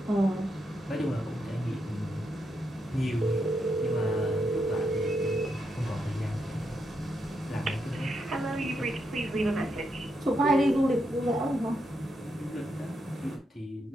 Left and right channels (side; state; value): both; normal; correlation 0.82